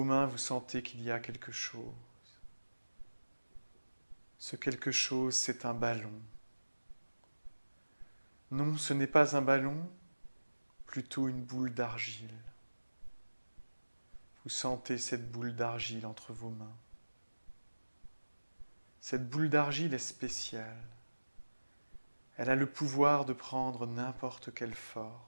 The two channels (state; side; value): inverted; both; correlation -1.00